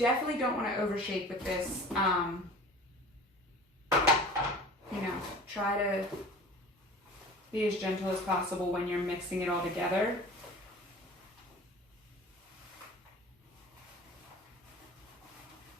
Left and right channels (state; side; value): normal; both; correlation 0.41